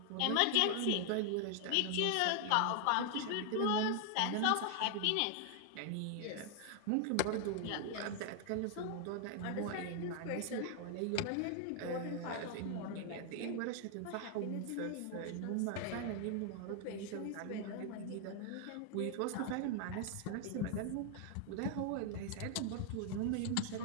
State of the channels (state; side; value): different; both; correlation 0.00